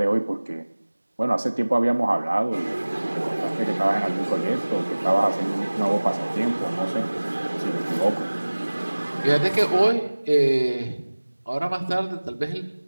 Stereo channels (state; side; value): inverted; both; correlation -1.00